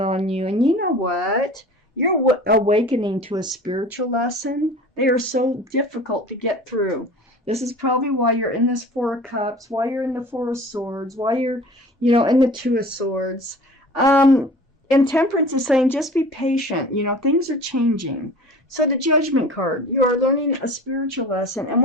you. And you know what? You're awakening to a spiritual lesson. They are so difficult to get through. This is probably why you're in this Four of Cups, why you're in the Four of Swords, why you're, in the Two of Swords. And Temperance is saying, just be patient. Things are changing. So the Judgment card, you are learning a spiritual lesson. And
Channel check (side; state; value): both; normal; correlation 0.42